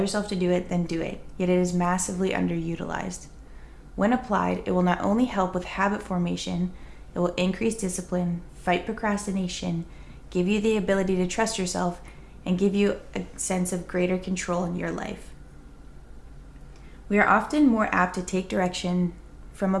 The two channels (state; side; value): identical; both; correlation 1.00